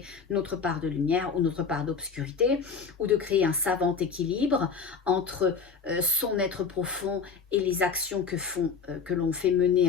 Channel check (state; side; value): quieter; right; 5.5 dB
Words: notre part de lumière ou notre part d'obscurité, ou de créer un savant équilibre entre son être profond et les actions que l'on fait